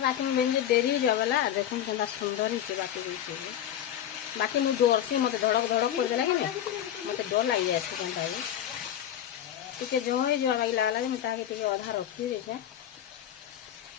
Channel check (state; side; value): quieter; right; 10.7 dB